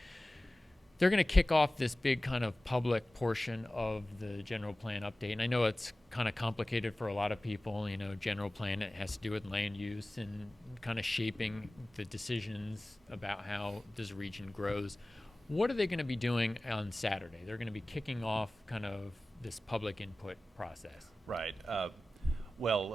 They're going to kick off this big kind of public portion of the general plan update. And I know it's kind of complicated for a lot of people. General plan, it has to do with land use and kind of shaping the decisions about how this region grows. What are they going to be doing on Saturday? They're going to be kicking off kind of this public input process. Right.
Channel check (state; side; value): normal; both; correlation 0.97